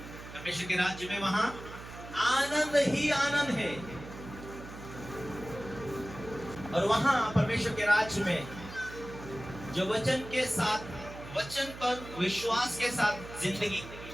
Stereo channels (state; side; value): noise; right; hum, 13 dB below the sound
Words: परमेश्वर के राज्य में वहां आनंद ही आनंद है। और वहां परमेश्वर के राज्य में जो वचन के साथ, वचन पर विश्वास के साथ जिंदगी